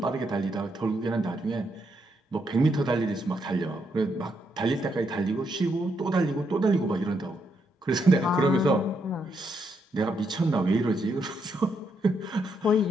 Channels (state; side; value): normal; both; correlation 0.78